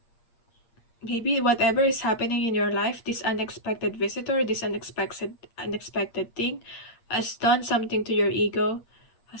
Maybe whatever is happening in your life, this unexpected visitor, this unexpected thing, has done something to your ego,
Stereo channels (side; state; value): right; late; 8.8 ms